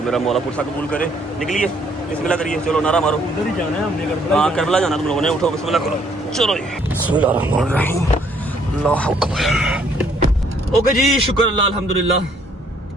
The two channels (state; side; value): normal; both; correlation 0.65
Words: میرا مولا پرسا قبول کرے. نکلیے, بسم اللہ کریے, چلو نعرہ مارو. ادھر ہی جانا ہے ہم نے, ہاں کربلا جانا تم لوگوں نے. اٹھو بسم اللہ کرو, چلو بسم اللہ الرحمن الرحیم. اللہ اکبر. اوکے جی, شکر اللہ الحمدللہ.